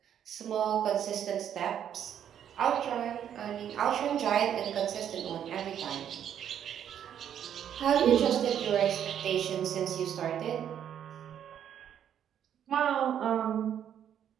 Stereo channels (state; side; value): quieter; left; 9.5 dB